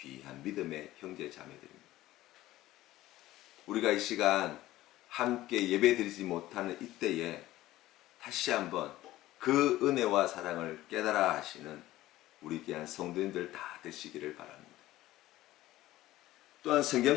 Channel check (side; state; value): right; quieter; 15.9 dB